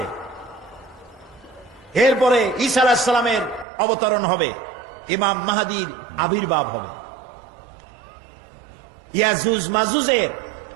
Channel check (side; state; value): left; drops out; at 3.7 s